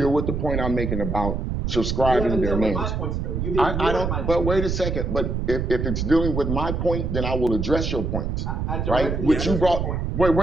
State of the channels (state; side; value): noise; right; rumble, 1 dB below the sound